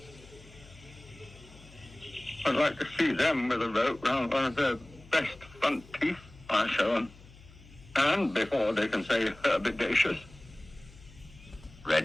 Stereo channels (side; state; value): left; noise; hum, 22 dB below the sound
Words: I'd like to see them with a rope round one of their best front teeth, I show them. And before they can say herbidaceous.